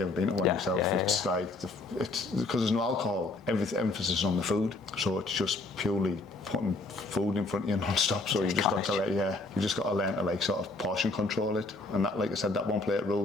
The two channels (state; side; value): quieter; right; 3.3 dB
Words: ever been to one yourself. It's like, it's because there's no alcohol, emphasis is on the food, so it's just purely putting food in front of you non-stop. So you just got to you just got to learn to like sort of portion control it, and that, like I said, that one plate rule